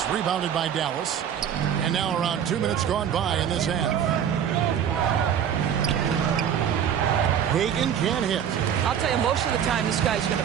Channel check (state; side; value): quieter; left; 8.9 dB